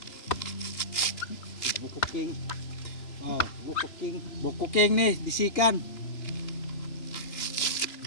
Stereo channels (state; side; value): late; right; 3.0 ms